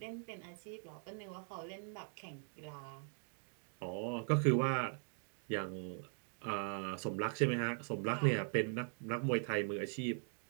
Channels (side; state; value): left; silent; 51 dB below the other